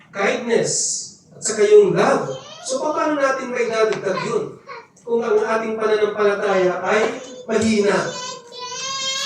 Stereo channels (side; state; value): both; identical; correlation 1.00